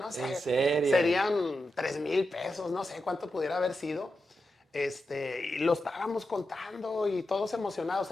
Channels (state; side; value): normal; both; correlation 0.89